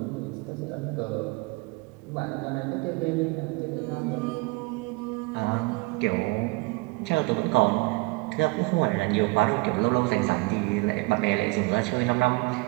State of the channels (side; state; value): left; quieter; 25.4 dB